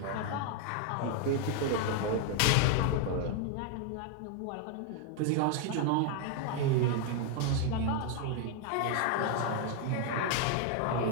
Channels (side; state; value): both; different; correlation 0.00